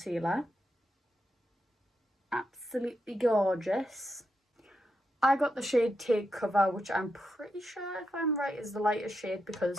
Absolutely gorgeous. I got the shade Take Cover, which I'm pretty sure, if I'm right, is the lightest shade because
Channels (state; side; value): normal; both; correlation 0.84